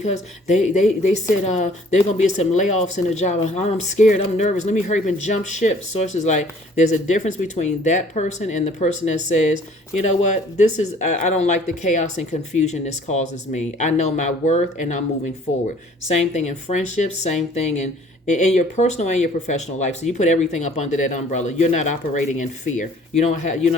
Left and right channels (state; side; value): normal; both; correlation 0.55